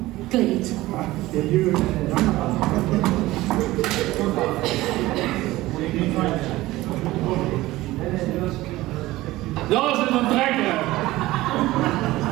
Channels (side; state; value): left; quieter; 17.8 dB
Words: kleed. Dat is het een trekker.